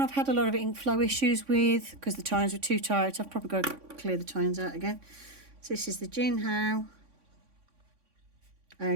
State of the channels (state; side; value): late; left; 3.5 ms